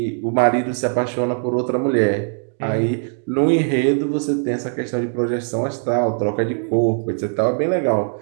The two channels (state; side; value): silent; left; digital silence